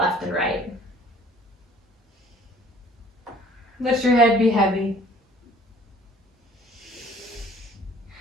and right. Let your head be heavy.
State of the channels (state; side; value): normal; both; correlation 0.54